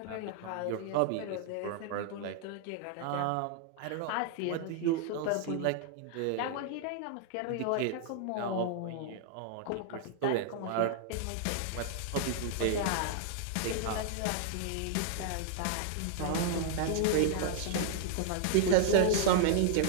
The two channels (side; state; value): both; different; correlation 0.00